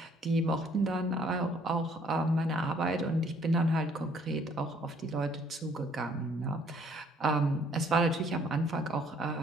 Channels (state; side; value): normal; both; correlation 0.62